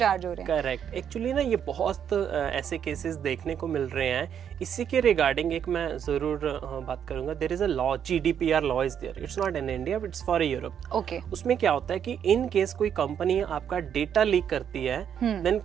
हो रहे हैं। करेक्ट। एक्चुअली ना ये बहुत ऐसे केसेस देखने को मिल रहे हैं। इसी के रिगार्डिंग एक मैं जरूर बात करूंगा। There is a law, GDPR law is there, it's not in India but it's for Europe. Okay. उसमें क्या होता है कि इन केस कोई कंपनी आपका डेटा लीक करती है, then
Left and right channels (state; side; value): quieter; left; 8.6 dB